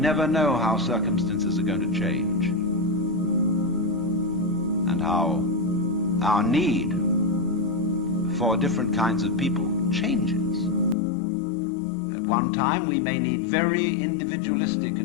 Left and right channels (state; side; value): drops out; right; at 11.0 s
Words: never know how circumstances are going to change, and how our need for different kinds of people changes. At one time we may need very individualistic